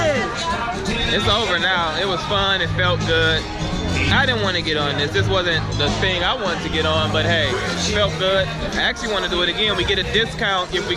It's over now. It was fun. It felt good. I didn't want to get on this. This wasn't the thing I wanted to get on, but hey, it felt good. I actually want to do it again. We get a discount if we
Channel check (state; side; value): identical; both; correlation 1.00